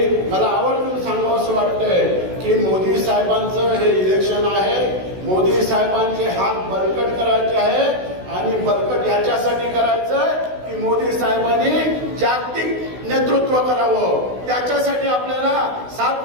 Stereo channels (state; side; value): late; left; 16 ms